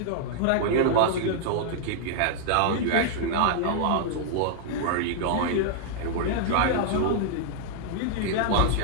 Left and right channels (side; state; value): both; different; correlation -0.01